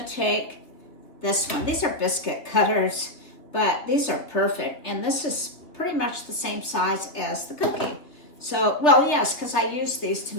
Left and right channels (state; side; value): late; right; 3.2 ms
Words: take this one. These are biscuit cutters, but these are perfect. And this is pretty much the same size as the cookie. So, well, yes, because I use these to